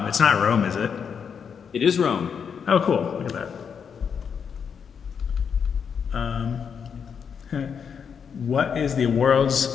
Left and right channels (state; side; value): quieter; right; 6.9 dB